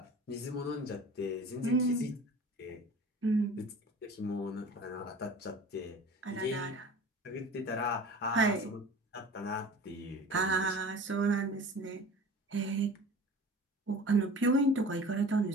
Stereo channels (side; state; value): both; normal; correlation 0.40